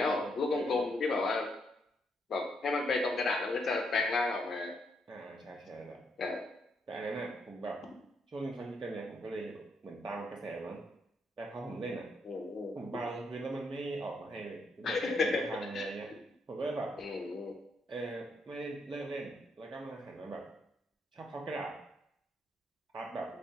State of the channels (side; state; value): both; normal; correlation 0.76